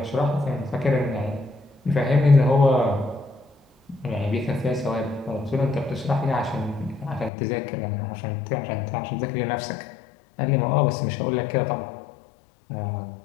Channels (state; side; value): drops out; right; at 7.3 s